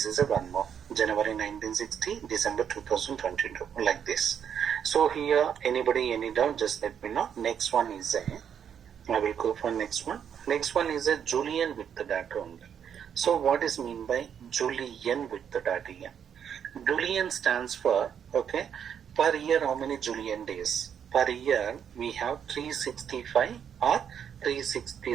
is a one more. January 1960, December 2022, like this. So here, anybody, any doubt, just let me know. Next one is a, I will go for next one. Next one is a Julian with the data only. So what is mean by Julian with the data here? Julian stands for, okay, per year how many Julian days? Per year we have 365 or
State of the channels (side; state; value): left; quieter; 8.3 dB